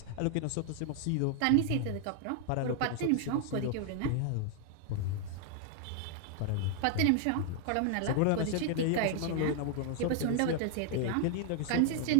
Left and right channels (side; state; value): both; different; correlation 0.00